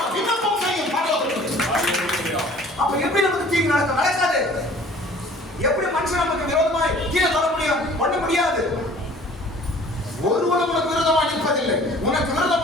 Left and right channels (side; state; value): both; normal; correlation 0.51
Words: விண்ணப்பம் செய்யும் பரலோகத்தில். அப்ப எப்படி நமக்கு தீங்கு நடக்காது? எப்படி மனுஷன் நமக்கு விரோதமாய் கீழே தர முடியும்? பண்ண முடியாது. ஒருவனும் உனக்கு விரோதமாய் நிற்பதில்லை. உனக்கு